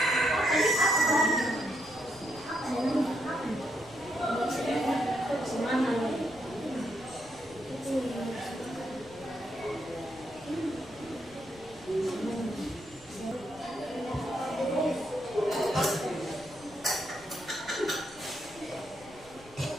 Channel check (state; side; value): noise; left; rumble, 22 dB below the sound